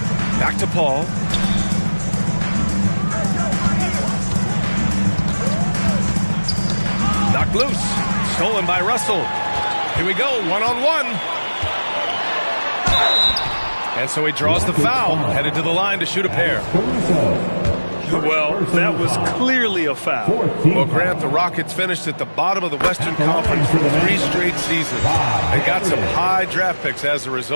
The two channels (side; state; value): both; inverted; correlation -1.00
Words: Back to Paul. Knocked loose. Stolen by Russell. Here we go, one-on-one. And so he draws the foul, headed to the line to shoot a pair. Well, that was clearly a foul. Well, Grant, the Rockets finished at the bottom of the Western Conference for 3 straight seasons. They got some high draft picks as a